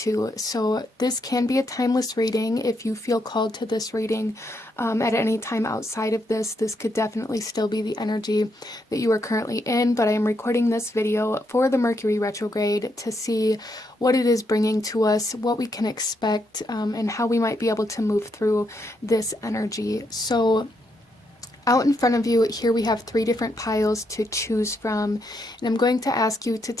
So this can be a timeless reading. If you feel called to this reading at any time outside of this could definitely still be the energy that you are currently in, but I am recording this video for the Mercury retrograde to see what it is bringing to us, what we can expect, and how we might be able to move through this energy. So out in front of you, here we have 3 different piles to choose from, and I'm going to ask you to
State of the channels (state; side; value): normal; both; correlation 0.78